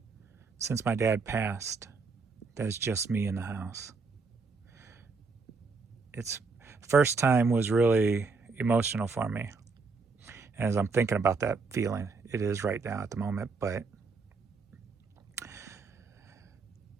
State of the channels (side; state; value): left; quieter; 4.4 dB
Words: since my dad passed that it's just me in the house. It's first time was really emotional for me. As I'm thinking about that feeling, it is right now at the moment, but